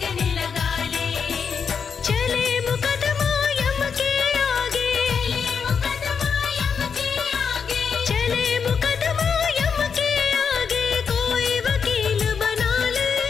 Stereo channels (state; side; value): quieter; right; 6.3 dB